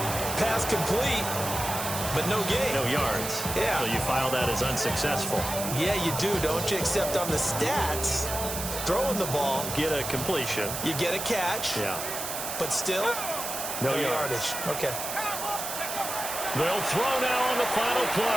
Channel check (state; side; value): noise; right; hiss, 5 dB below the sound